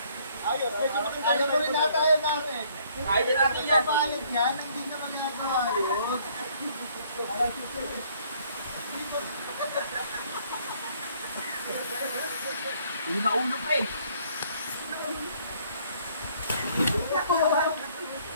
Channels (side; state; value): both; inverted; correlation -0.63